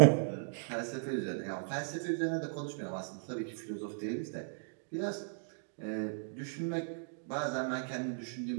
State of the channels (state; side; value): silent; left; digital silence